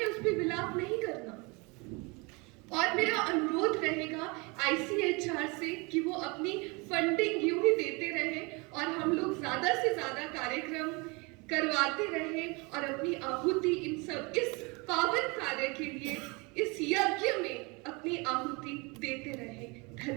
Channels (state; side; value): quieter; left; 28.3 dB